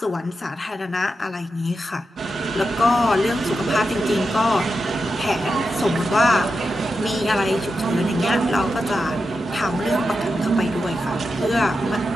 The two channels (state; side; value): normal; both; correlation 0.89